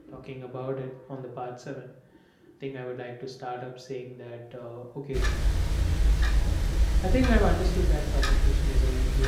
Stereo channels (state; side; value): identical; both; correlation 1.00